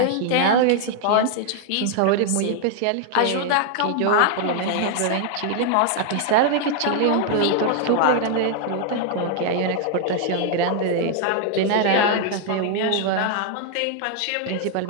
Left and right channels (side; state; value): both; different; correlation 0.00